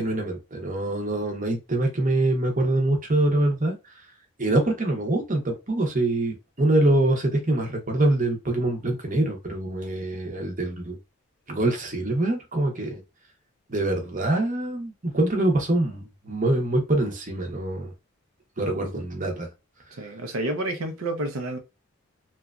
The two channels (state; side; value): normal; both; correlation 0.66